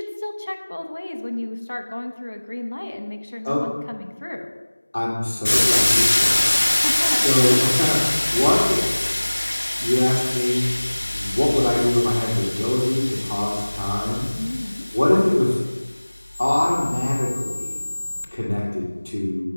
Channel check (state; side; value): inverted; both; correlation -1.00